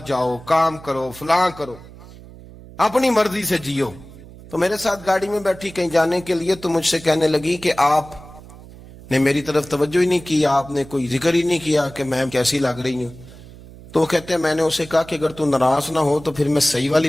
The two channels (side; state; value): right; noise; hum, 19 dB below the sound